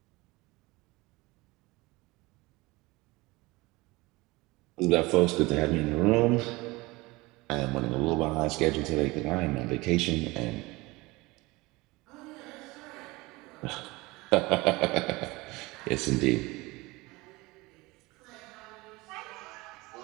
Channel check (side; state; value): left; quieter; 22.3 dB